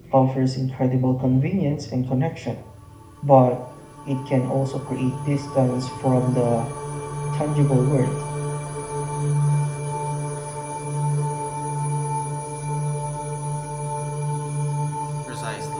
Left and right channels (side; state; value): both; identical; correlation 1.00